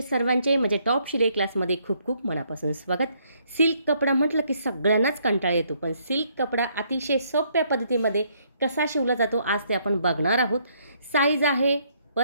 सर्वांचे म्हणजे टॉप शिलाई क्लासमध्ये खूप खूप मनापासून स्वागत. सिल्क कपडा म्हटलं की सगळ्यांनाच कंटाळा येतो, पण सिल्क कपडा अतिशय सोप्या पद्धतीमध्ये कसा शिवला जातो आज ते आपण बघणार आहोत. साईज आहे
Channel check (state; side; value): inverted; both; correlation -0.70